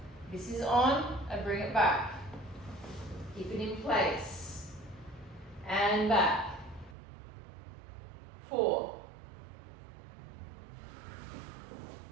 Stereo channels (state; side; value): drops out; left; at 7.0 s